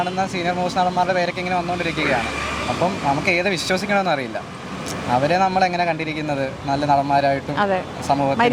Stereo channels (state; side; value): identical; both; correlation 1.00